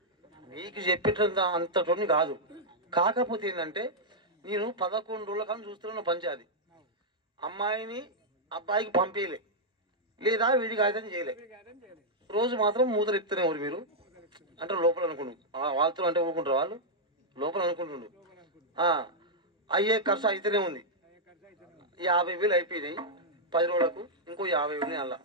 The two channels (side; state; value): both; normal; correlation -0.06